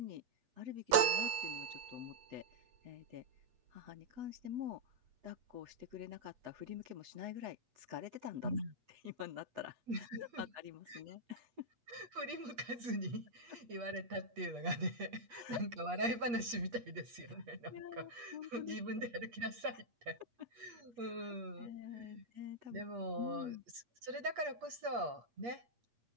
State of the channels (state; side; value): late; left; 8.4 ms